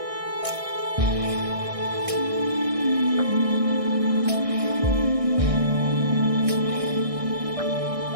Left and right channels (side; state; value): left; late; 1.6 ms